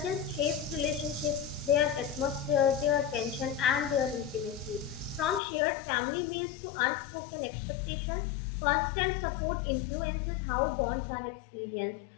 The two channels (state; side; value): drops out; right; at 5.4 s